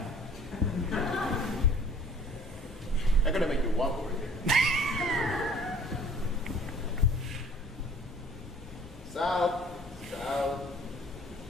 I'm gonna make you walk over here. South. Is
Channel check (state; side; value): normal; both; correlation 0.52